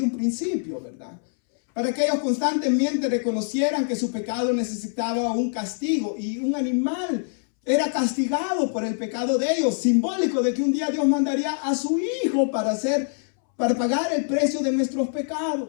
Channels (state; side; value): silent; right; 62 dB below the other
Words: un principio, ¿verdad? Para que ellos constantemente reconocieran que su pecado necesitaba un castigo, y un animal era castigado por el pecado de ellos, simbólico de que un día Dios mandaría a su hijo para pagar el precio de nuestros